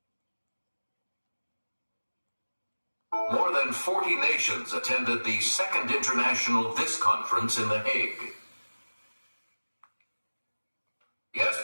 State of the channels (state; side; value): inverted; both; correlation -1.00